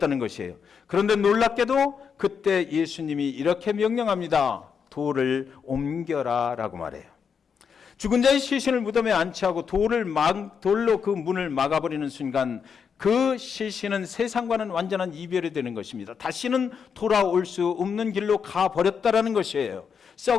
것이에요. 그런데 놀랍게도 그때 예수님이 이렇게 명령합니다. 돌을 옮겨라 라고 말해요. 죽은 자의 시신을 무덤에 안치하고 돌로 그 문을 막아버리는 순간 그 시신은 세상과는 완전한 이별이 되는 것입니다. 다시는 돌아올 수 없는 길로 가버렸다라는 것이에요.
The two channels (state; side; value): quieter; right; 6.6 dB